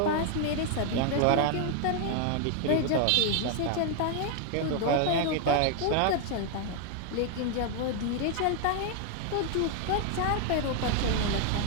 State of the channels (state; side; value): different; both; correlation 0.00